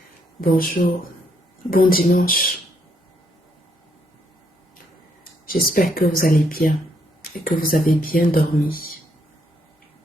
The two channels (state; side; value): normal; both; correlation 0.73